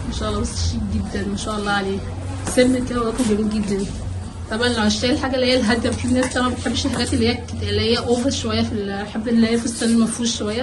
ما شاء الله بس شيك جدا ما شاء الله عليه، سن كده ورقم جميل جدا. طبعا لو هشتري الحاجه اللي هي الهاديه، في ناس طبعا ما بتحبش الحاجات اللي هي اوفر شويه، بحب اللي هي في السن المفروش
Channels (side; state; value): both; identical; correlation 1.00